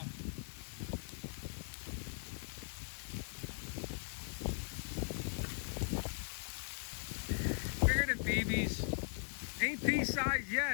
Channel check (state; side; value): silent; right; digital silence